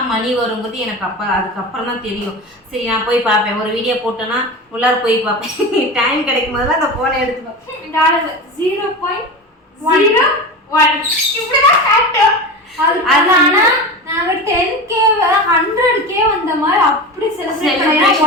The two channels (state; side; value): normal; both; correlation 0.27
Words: மணி வருங்கிறது எனக்கு அதுக்கப்புறம் தான் தெரியும். சரி நான் போய் பார்ப்பேன். ஒரு வீடியோ போட்டேன்னா உள்ளார போய் பார்ப்பேன். டைம் கிடைக்கும் போதெல்லாம் அந்த போனை எடுத்துப்பேன். 0.01 இப்படிதான் காட்டும். ஆனா நாங்க 10K 100K வந்த மாதிரி அப்படி செலிப்ரேட் பண்ணோம்.